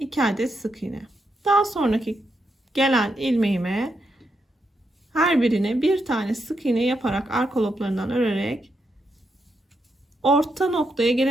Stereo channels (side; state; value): both; normal; correlation 0.82